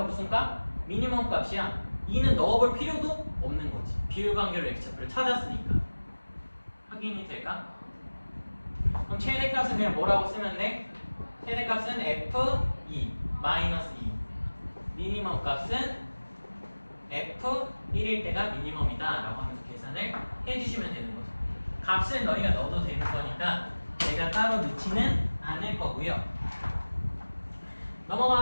무슨 값? 미니멈 값이야. 2는 넣어볼 필요도 없는 거지. 비율관계로 x좌표를 찾았으니까. 확인이 될까? 그럼 최대값은 그냥 뭐라고 쓰면 돼? 최대값은 f2 마이너스 2. 미니멈 값은 f1일 때가 미니멈이다 라고 하면서 계산을 해주시면 되는 거죠. 값을 너희가 넣어도 되는 거니까 내가 따로 넣지는 않을 거고요.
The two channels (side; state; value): both; inverted; correlation -1.00